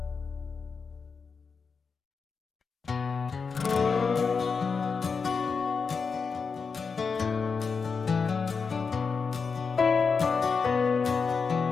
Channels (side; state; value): right; quieter; 5.3 dB